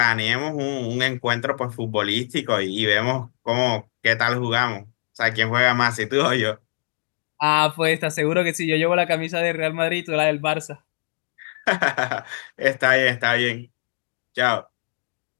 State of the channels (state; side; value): silent; right; digital silence